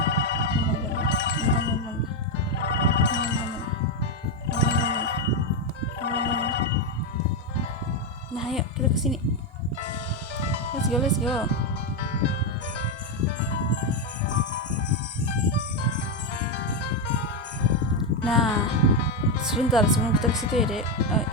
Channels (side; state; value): both; normal; correlation 0.07